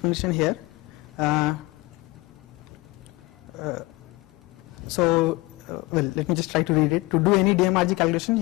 here. Well, let me just try to read it. To do any DMRG calculation,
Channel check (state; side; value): quieter; right; 22.5 dB